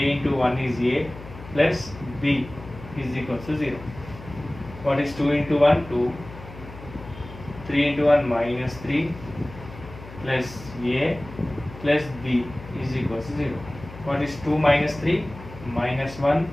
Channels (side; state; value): left; noise; hum, 15 dB below the sound